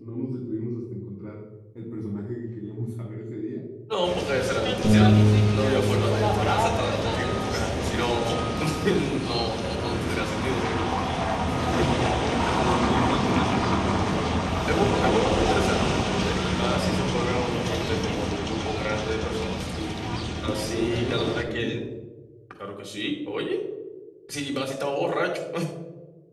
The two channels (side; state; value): both; identical; correlation 1.00